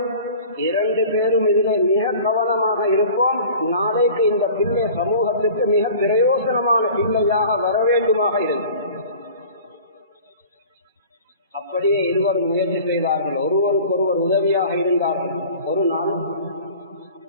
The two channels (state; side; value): inverted; both; correlation -0.44